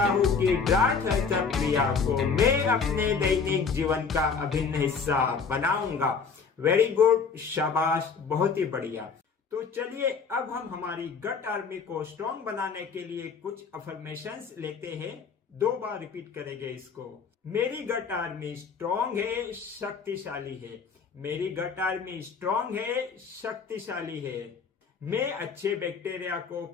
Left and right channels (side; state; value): right; quieter; 5.5 dB